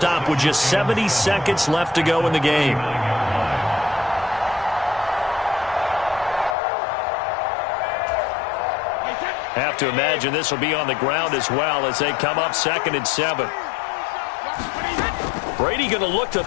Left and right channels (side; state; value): right; drops out; at 6.6 s